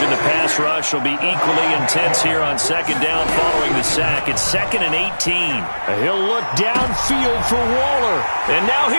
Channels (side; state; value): both; inverted; correlation -1.00